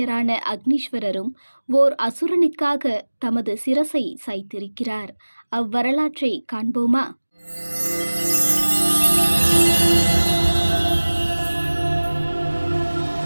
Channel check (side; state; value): both; inverted; correlation -1.00